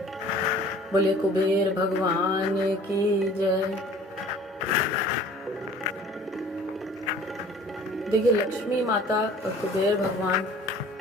बोले कुबेर भगवान की जय। देखिए, लक्ष्मी माता और कुबेर भगवान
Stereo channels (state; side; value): normal; both; correlation 0.49